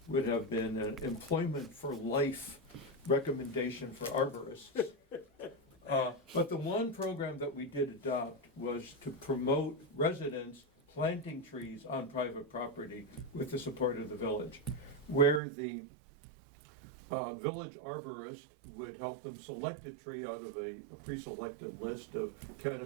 would have been an employment for life recommendation for arborists. But the one program that we did adopt was to promote residents planting trees on private property with the support of the village, where the village arborist would help them select a tree out of a pre-selected list of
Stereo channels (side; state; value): left; drops out; at 15.4 s